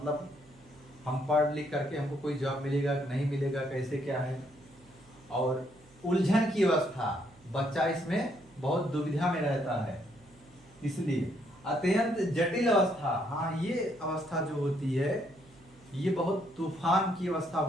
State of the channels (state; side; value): noise; right; hum, 27 dB below the sound